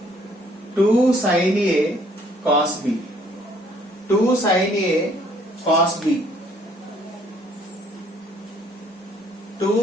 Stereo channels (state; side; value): normal; both; correlation 0.62